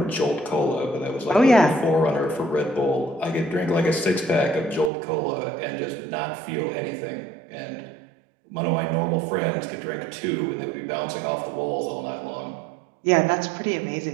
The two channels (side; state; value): left; drops out; at 4.9 s